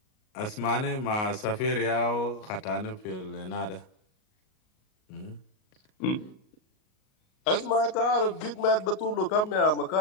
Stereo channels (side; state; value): right; late; 38 ms